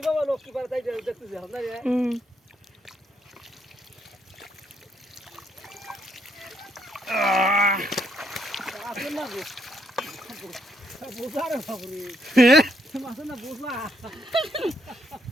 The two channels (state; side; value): normal; both; correlation 0.75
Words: বাবা লোক কি পারে তাই দেখতেছি আমরা রে আসেন না গো বুঝা রে বাবুরে মাছ না বুঝলা